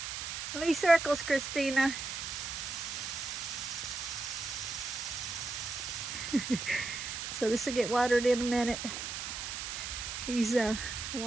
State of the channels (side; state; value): right; noise; hiss, 5 dB below the sound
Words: How many circles, Christina? So this will get watered in a minute. He's